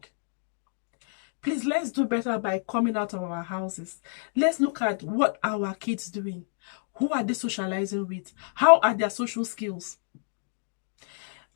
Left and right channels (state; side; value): silent; right; digital silence